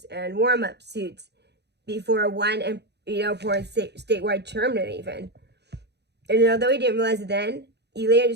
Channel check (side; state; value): left; late; 0.49 ms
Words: and warm-up suits before one important statewide tournament even. And although he didn't realize it then, he later